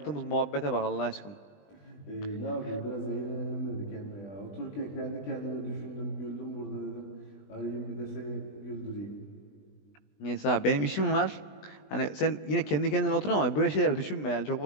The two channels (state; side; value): late; right; 20 ms